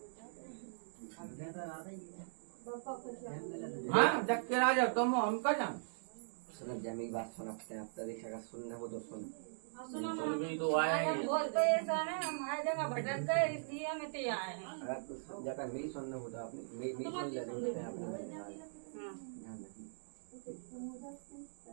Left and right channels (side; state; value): left; silent; digital silence